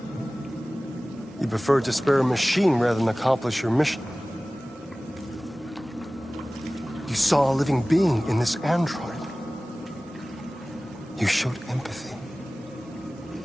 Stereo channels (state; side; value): normal; both; correlation 0.98